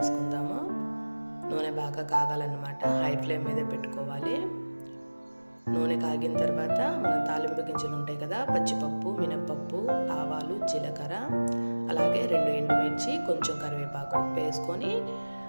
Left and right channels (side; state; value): both; inverted; correlation -1.00